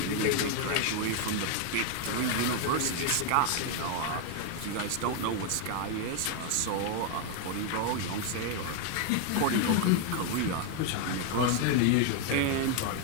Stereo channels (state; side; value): different; both; correlation 0.01